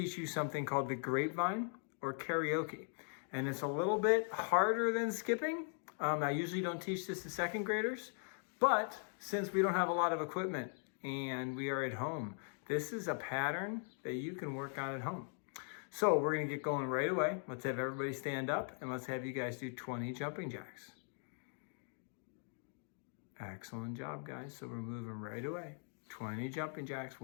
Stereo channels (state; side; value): silent; right; 51 dB below the other